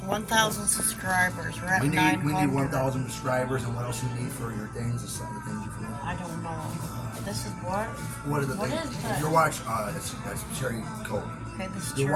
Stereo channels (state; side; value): identical; both; correlation 1.00